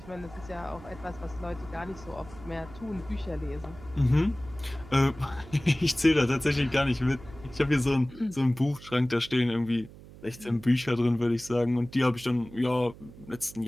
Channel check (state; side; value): noise; right; hum, 18 dB below the sound